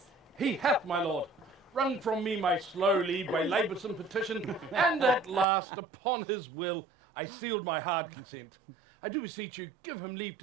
He hath, my lord, wrung from me my slow leave by laboursome petition, and at last, upon his will, I sealed my hard consent. I do beseech you, give him leave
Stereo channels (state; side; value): drops out; left; at 5.5 s